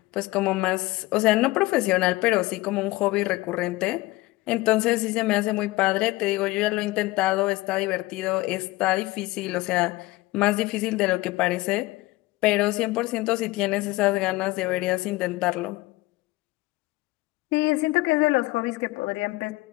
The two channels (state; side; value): quieter; right; 19.7 dB